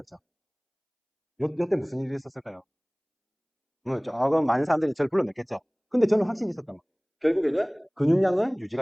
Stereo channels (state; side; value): identical; both; correlation 1.00